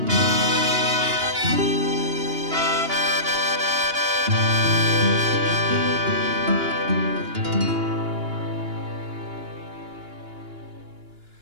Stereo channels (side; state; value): left; late; 2.9 ms